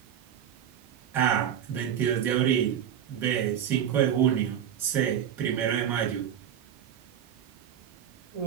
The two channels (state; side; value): quieter; left; 9.5 dB